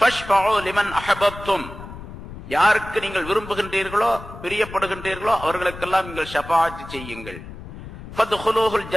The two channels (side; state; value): left; noise; rumble, 13 dB below the sound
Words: லிமன் அஹபப்தும், யாருக்கு நீங்கள் விரும்புகின்றீர்களோ பிரியப்படுகின்றீர்களோ அவர்களுக்கெல்லாம் நீங்கள் ஷஃபாஅத் செய்யுங்கள். ஃபத்ஹுலூஹுல்